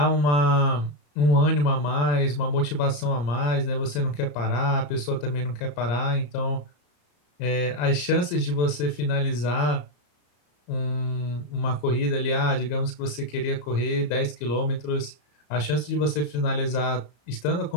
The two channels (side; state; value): right; late; 34 ms